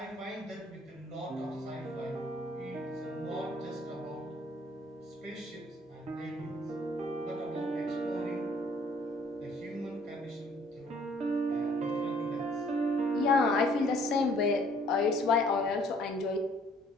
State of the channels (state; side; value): normal; both; correlation 0.60